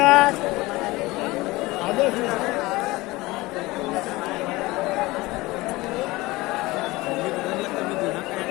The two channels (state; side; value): quieter; right; 20.8 dB